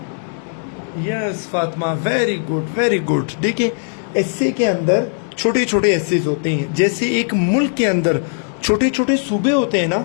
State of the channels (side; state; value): right; silent; 67 dB below the other